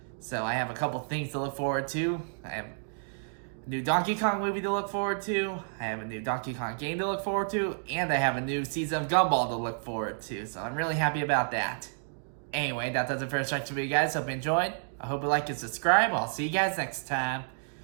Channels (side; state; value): left; silent; digital silence